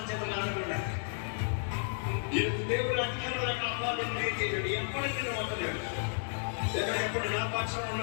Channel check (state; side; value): silent; right; 56 dB below the other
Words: చేతులు ఆడకుండా దేవుడు అధికారుల కాపాలని చేయడు. ఎప్పటికీ వదలేడు. ఎప్పుడు నా పక్షం